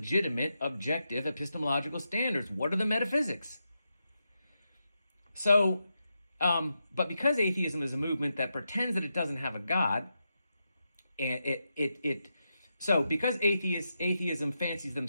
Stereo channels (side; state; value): both; inverted; correlation -0.86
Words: objective epistemological standards? What are the metaphysics? So, but because atheism is a movement that pretends that it doesn't have a God, and so because atheism fancies